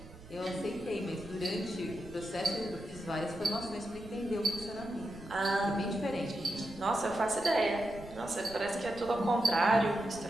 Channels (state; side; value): noise; right; rumble, 18 dB below the sound